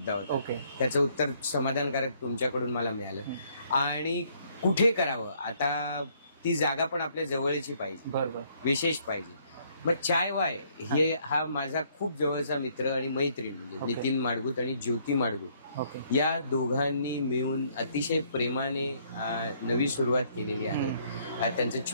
होता. ओके, त्याचं उत्तर समाधानकारक तुमच्याकडून मला मिळालं. आणि कुठे करावं, आता ती जागा पण आपल्या जवळची पाहिजे, बरोबर, विशेष पाहिजे. मग चाय वाय हे हा माझा खूप जवळचा मित्र आणि मैत्रीण म्हणजे नितीन माडगूत आणि ज्योती माडगूत या दोघांनी मिळून अतिशय प्रेमाने नवी सुरुवात केलेली आहे. त्यांचं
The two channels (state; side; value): inverted; both; correlation -0.66